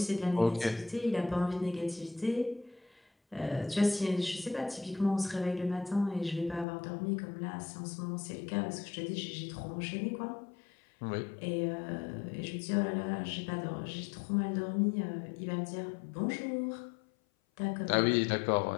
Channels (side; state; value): right; drops out; at 6.7 s